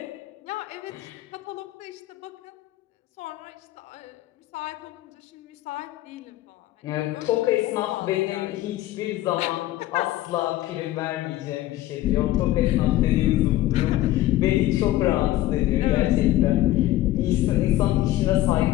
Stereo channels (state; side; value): quieter; right; 15.4 dB